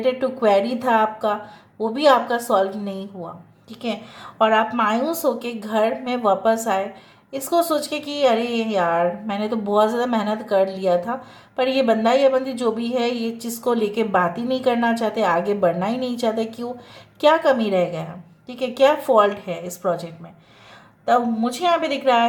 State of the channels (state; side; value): identical; both; correlation 1.00